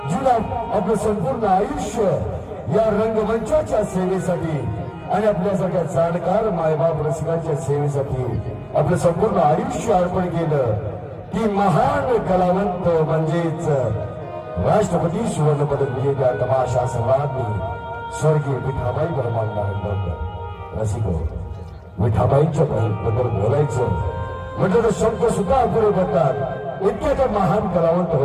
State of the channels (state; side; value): identical; both; correlation 1.00